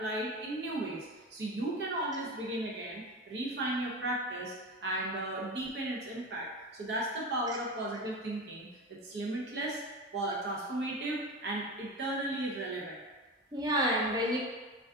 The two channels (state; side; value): normal; both; correlation 0.26